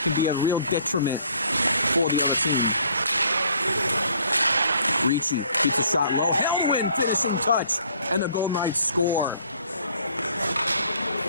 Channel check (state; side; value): inverted; both; correlation -0.60